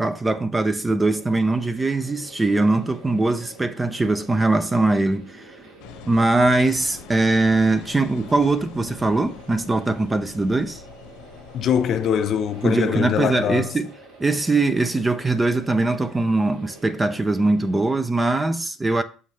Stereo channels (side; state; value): both; normal; correlation 0.88